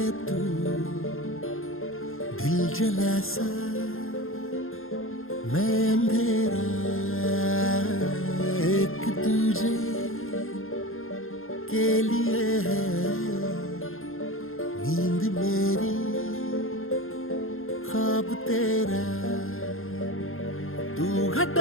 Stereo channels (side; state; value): right; late; 0.60 ms